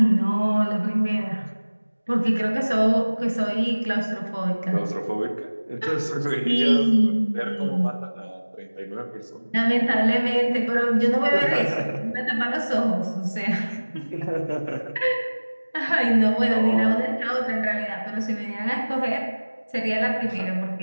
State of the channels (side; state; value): both; inverted; correlation -1.00